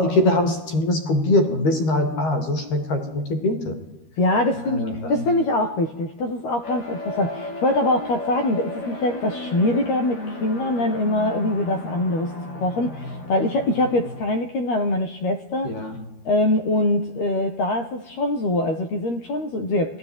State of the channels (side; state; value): right; late; 13 ms